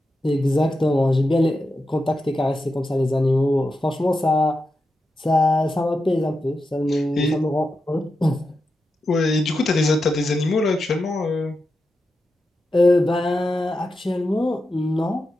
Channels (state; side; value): normal; both; correlation 0.89